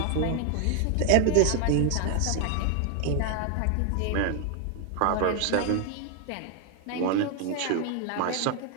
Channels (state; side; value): different; both; correlation 0.01